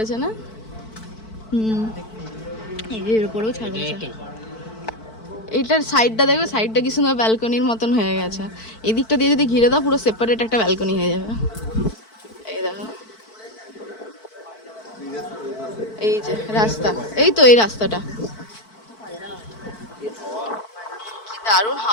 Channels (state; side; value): late; right; 4.5 ms